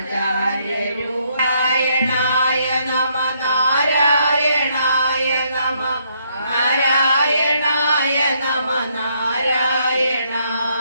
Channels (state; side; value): inverted; both; correlation -0.72